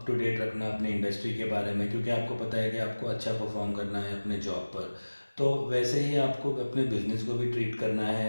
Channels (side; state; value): both; inverted; correlation -1.00